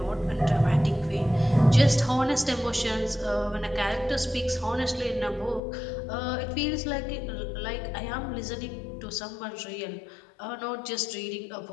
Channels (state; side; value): drops out; right; at 5.6 s